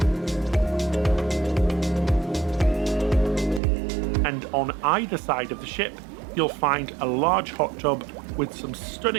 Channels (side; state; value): left; drops out; at 3.6 s